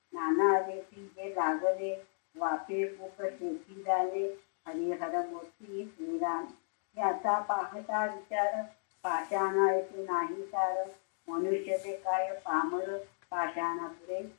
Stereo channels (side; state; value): right; silent; digital silence